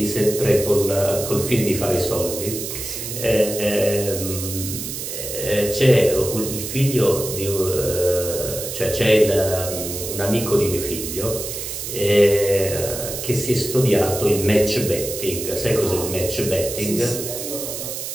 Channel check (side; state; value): right; noise; hiss, 6 dB below the sound